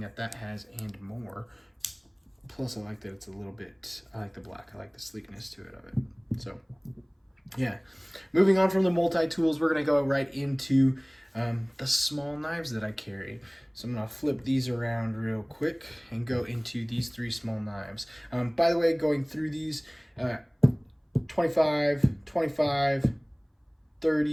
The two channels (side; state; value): both; identical; correlation 1.00